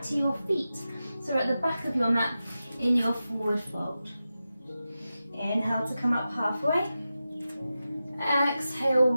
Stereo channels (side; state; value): both; inverted; correlation -0.92